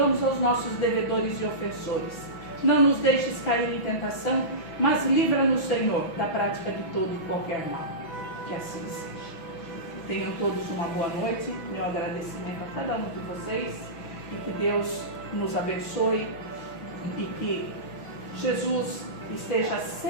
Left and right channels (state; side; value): late; right; 6.0 ms